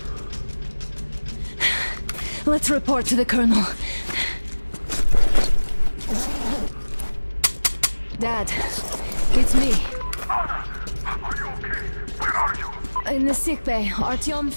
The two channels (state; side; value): inverted; both; correlation -1.00